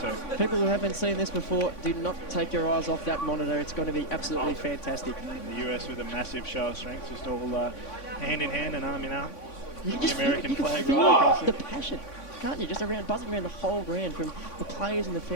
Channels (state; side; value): late; right; 3.5 ms